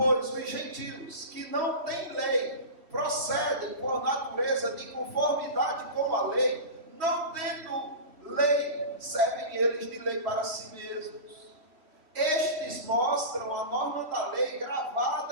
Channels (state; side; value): late; left; 3.1 ms